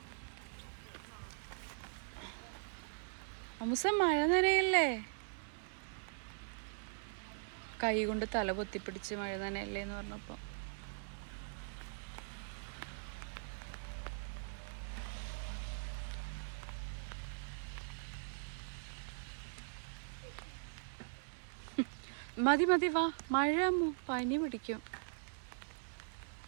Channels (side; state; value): left; silent; digital silence